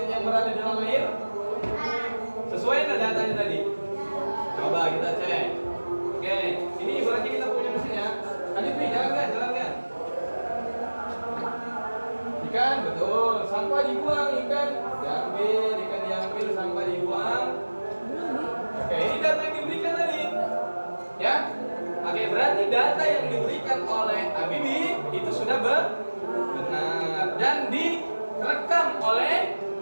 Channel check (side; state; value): both; inverted; correlation -1.00